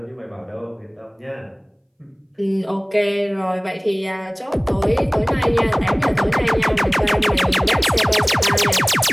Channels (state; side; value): identical; both; correlation 1.00